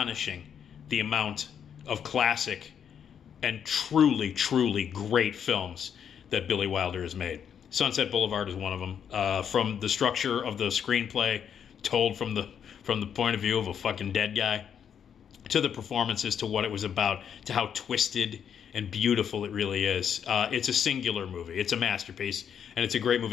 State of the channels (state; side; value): quieter; right; 8.2 dB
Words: the amount of classic and truly, truly great films that Billy Wilder has made. Sunset Boulevard is one of them. From the structure of the screenplay, told from the point of view of a fucking dead guy, to the performances, to what it was about, to how twisted and beautiful it really is. It's a singular movie. It's a masterpiece, and it's a great